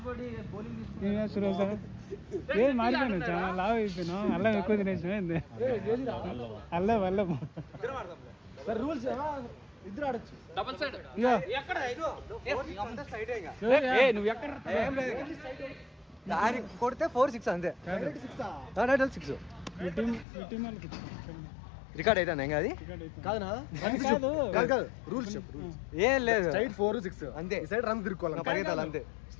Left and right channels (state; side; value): drops out; right; at 20.2 s